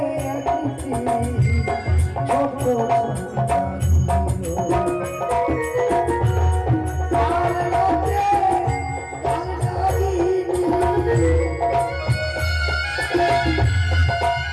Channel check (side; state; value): both; identical; correlation 1.00